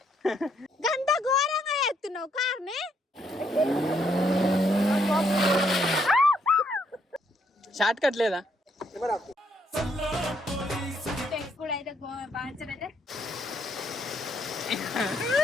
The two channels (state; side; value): normal; both; correlation 0.73